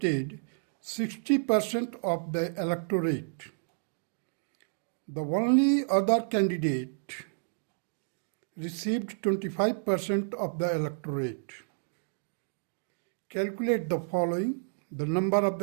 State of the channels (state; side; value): silent; left; digital silence